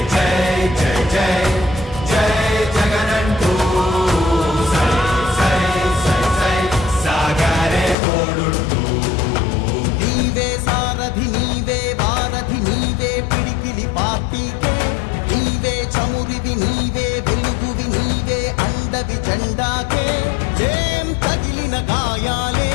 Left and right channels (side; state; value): right; drops out; at 8.0 s